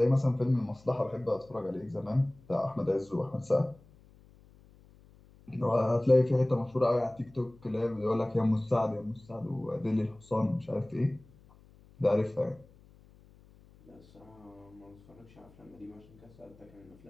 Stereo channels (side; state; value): left; noise; hum, 26 dB below the sound